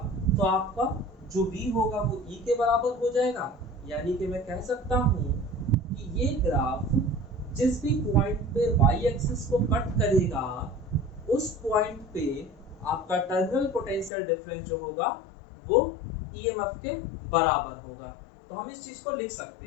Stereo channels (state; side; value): drops out; right; at 14.1 s